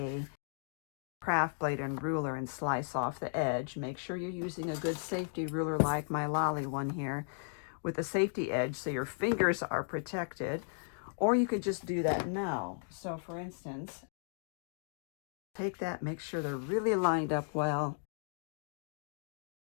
craft blade and ruler and slice off the edge. Make sure you're using a good safety ruler like my Lolly one here with a safety edge so your fingers are protected. Or you could just do that now. So for instance, take that, make sure they're really lined up well.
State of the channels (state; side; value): silent; right; digital silence